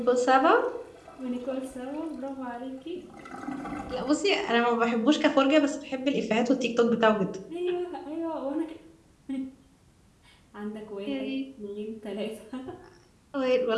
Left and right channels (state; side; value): identical; both; correlation 1.00